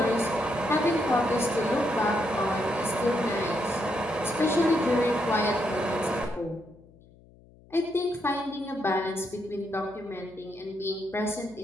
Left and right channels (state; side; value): noise; left; hum, 26 dB below the sound